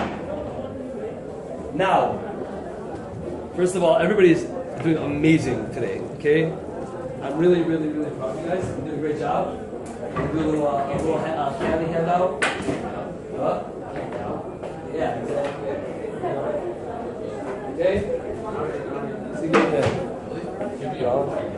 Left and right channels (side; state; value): both; identical; correlation 1.00